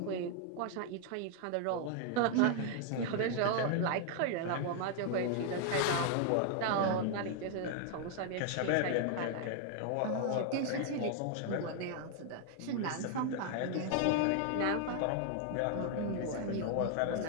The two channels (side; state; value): both; different; correlation 0.00